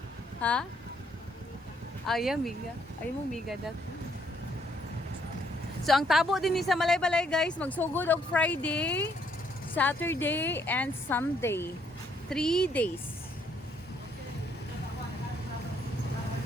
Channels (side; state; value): both; normal; correlation 0.70